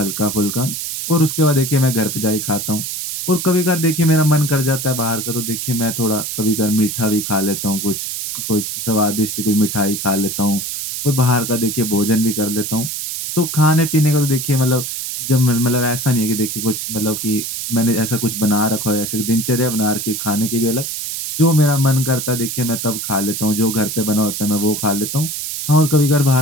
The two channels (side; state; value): right; noise; hiss, 5 dB below the sound